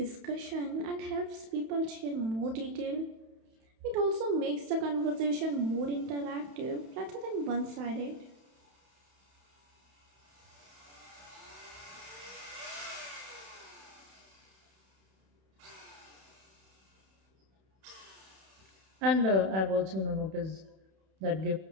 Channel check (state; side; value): late; left; 31 ms